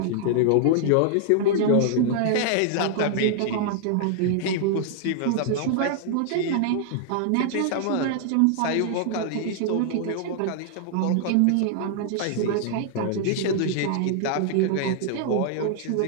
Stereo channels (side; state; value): both; different; correlation -0.01